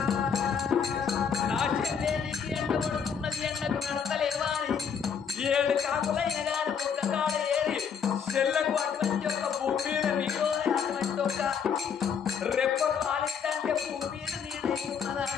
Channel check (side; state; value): right; quieter; 6.9 dB